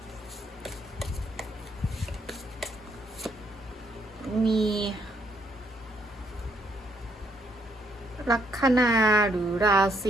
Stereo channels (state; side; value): normal; both; correlation 0.72